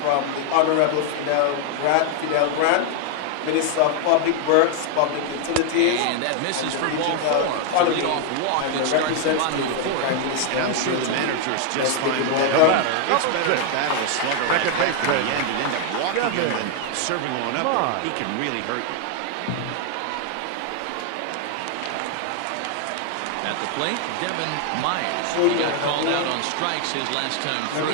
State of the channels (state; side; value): different; both; correlation 0.00